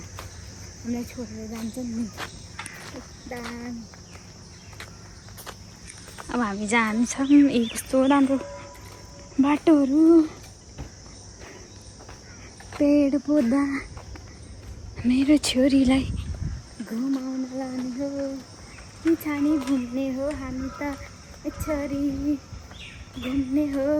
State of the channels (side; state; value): both; identical; correlation 1.00